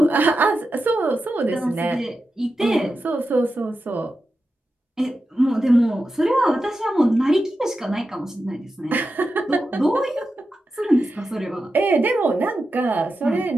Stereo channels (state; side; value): normal; both; correlation 0.90